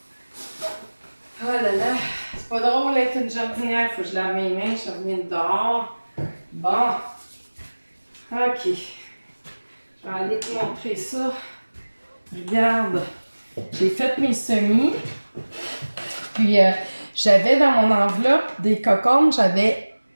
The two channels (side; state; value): both; inverted; correlation -1.00